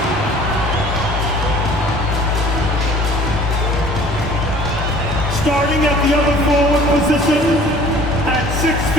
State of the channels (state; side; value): normal; both; correlation 0.50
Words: Starting at the other forward position, at 6